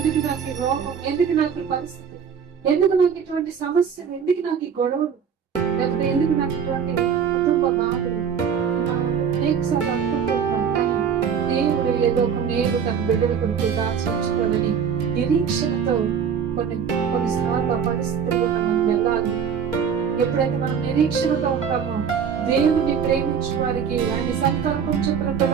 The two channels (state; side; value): quieter; left; 7.2 dB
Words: నాకు ఈ రోగం, ఎందుకు నాకు ఈ పరిస్థితి, ఎందుకు నాకు ఇటువంటి సమస్యలు, ఎందుకు నాకు ఈ గొడవలు, లేకపోతే ఎందుకు నాకు ఇటువంటి కుటుంబ బాధలు అనేకసార్లు అనుకుంటున్నాం. కానీ దేవుడు ఏదో ఒక మేలు తన బిడ్డల కొరకు దాచించుకోవాలని నిరీక్షణతో కొన్నిసార్లు ఆ పరిస్థితుల్లో మనం వెళ్ళాలి. ఎప్పుడైతే మనం నిరీక్షణతో ఉంటామో దేవుని ప్రేమించే వారికి, ఆయన సంకల్పం చొప్పున